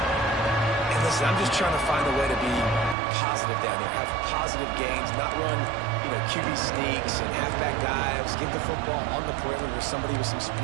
And listen, I'm just trying to find a way to be positive down there, have positive gains, not run, QB sneaks and halfback dives, give the football on the perimeter to somebody with some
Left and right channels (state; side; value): drops out; left; at 3.0 s